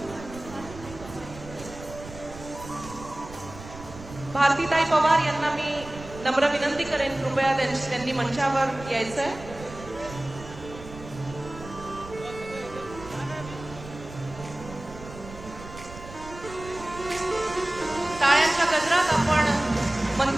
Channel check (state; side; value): noise; right; rumble, 15 dB below the sound